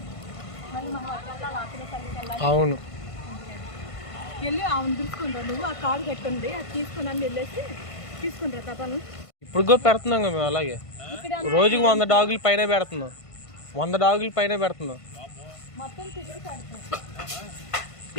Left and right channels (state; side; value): late; right; 1.5 ms